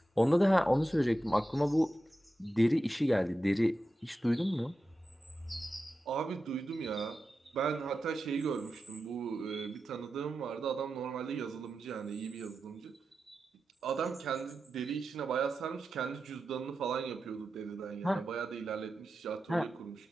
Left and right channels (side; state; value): both; normal; correlation 0.91